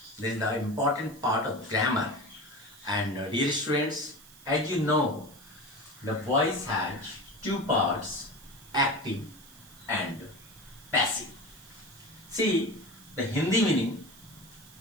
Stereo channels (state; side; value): noise; right; hiss, 21 dB below the sound